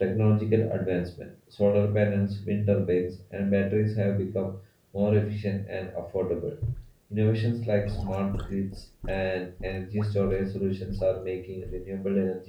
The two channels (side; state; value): both; identical; correlation 1.00